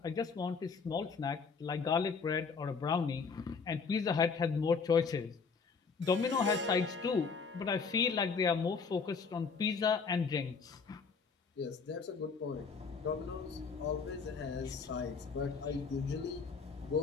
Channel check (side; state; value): right; quieter; 5.2 dB